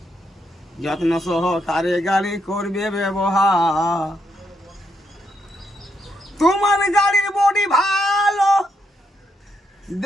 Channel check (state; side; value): normal; both; correlation 0.78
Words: যত্ন সহকারে গাড়ি করবে ব্যবহার। তোমার গাড়ির বডি ভালো,